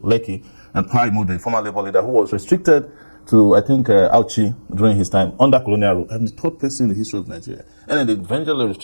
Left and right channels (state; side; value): inverted; both; correlation -1.00